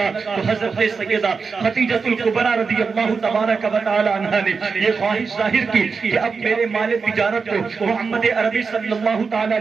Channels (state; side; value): quieter; left; 5.1 dB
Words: تو حضرت سیدہ خدیجہ الکبریٰ رضی اللہ تبارک و تعالی عنہا نے یہ خواہش ظاہر کی کہ اب میرے مال تجارت کو محمد عربی صلی اللہ تعالی